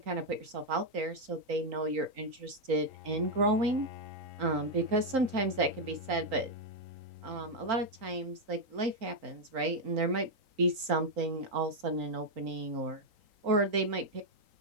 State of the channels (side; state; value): left; late; 4.4 ms